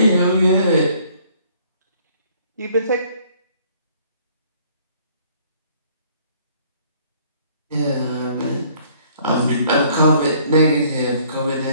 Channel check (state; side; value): inverted; both; correlation -0.60